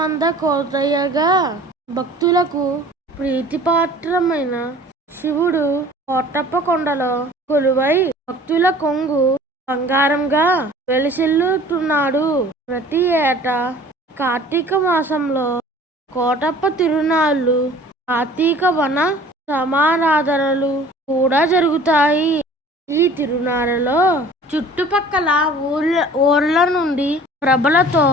కోటయ్యగా భక్తులకు ప్రీతిపాత్రమైన శివుడు కోటప్ప కొండలో కొలువై భక్తుల కొంగు బంగారంగా వెలిసిల్లుతున్నాడు. ప్రతి ఏటా కార్తీక మాసంలో కోటప్ప తిరునాళ్ళు, కార్తీక వన సమారాధనలు కూడా జరుగుతాయి. ఈ తిరునాళ్ళలో చుట్టుపక్కల ఊర్ల నుండి ప్రభలతో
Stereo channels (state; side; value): normal; both; correlation 0.48